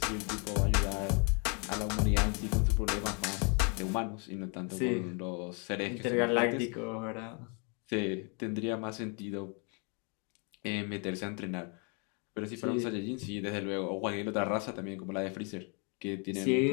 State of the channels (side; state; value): right; quieter; 35.4 dB